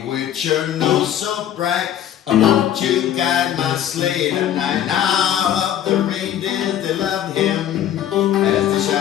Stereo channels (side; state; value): right; quieter; 10.8 dB